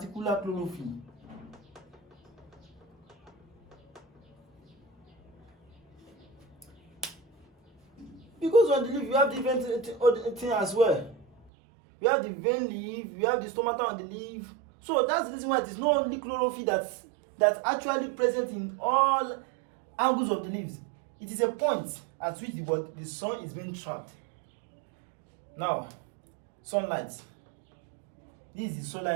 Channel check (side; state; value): left; drops out; at 11.5 s